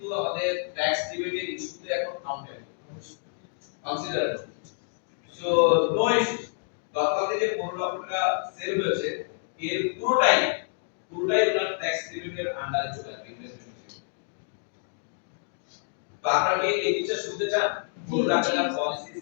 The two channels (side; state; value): right; silent; 59 dB below the other